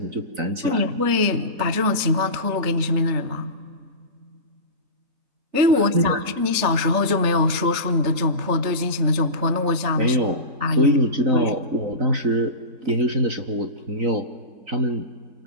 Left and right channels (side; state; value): left; late; 3.4 ms